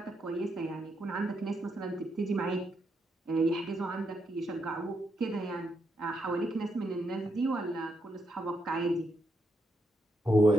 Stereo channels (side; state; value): both; normal; correlation 0.81